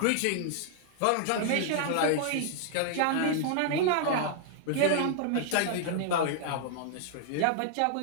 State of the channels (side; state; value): both; different; correlation -0.01